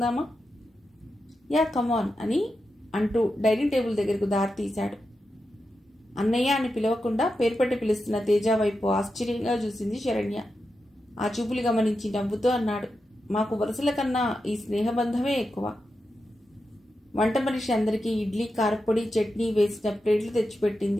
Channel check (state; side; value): normal; both; correlation 0.89